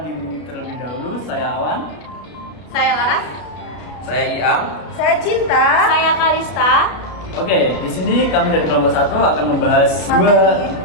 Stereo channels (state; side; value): late; right; 33 ms